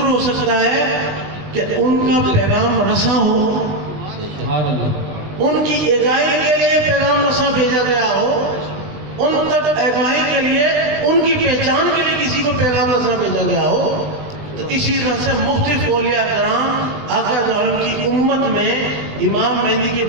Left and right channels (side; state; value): left; late; 20 ms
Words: ہو سکتا ہے کہ ان کا پیغام رساں ہو، ان کی اگائی کے لیے پیغام رساں بھیجا گیا ہو، ان تک اگائی کے لیے، ان کی پہچان کے لیے کسی کو پیغام رساں بھیجا گیا ہو۔ تو اسی طرح سے مختلف اولیاء کرام آقا دو عالم کی امت میں امام مہدی کے